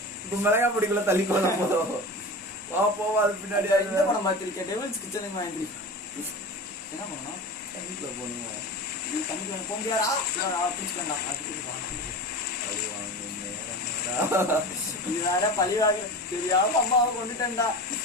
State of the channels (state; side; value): normal; both; correlation 0.30